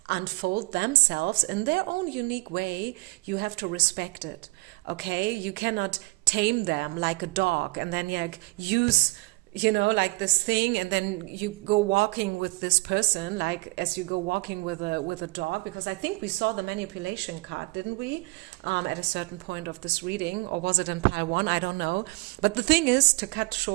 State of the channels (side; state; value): left; quieter; 24.5 dB